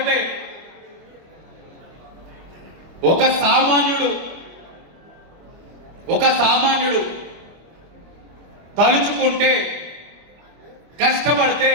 ఒక సామాన్యుడు తలుచుకుంటే, కష్టపడితే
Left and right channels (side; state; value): left; late; 25 ms